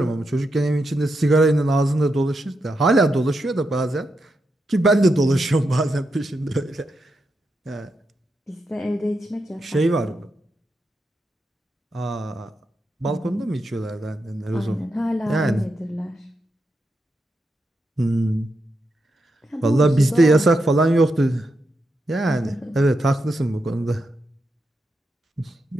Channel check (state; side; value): normal; both; correlation 0.85